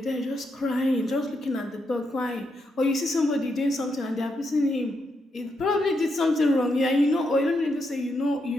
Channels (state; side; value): normal; both; correlation 0.81